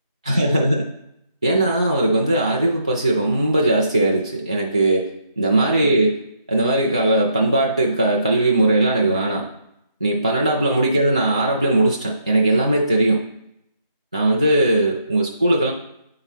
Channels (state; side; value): inverted; both; correlation -0.74